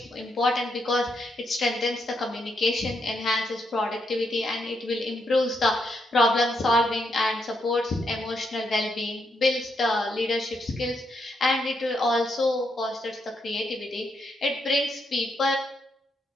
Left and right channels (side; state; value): both; normal; correlation 0.79